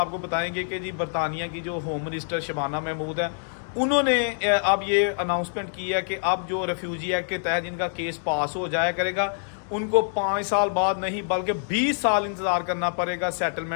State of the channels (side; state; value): right; silent; digital silence